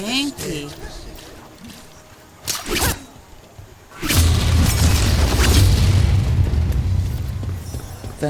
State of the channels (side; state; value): both; identical; correlation 1.00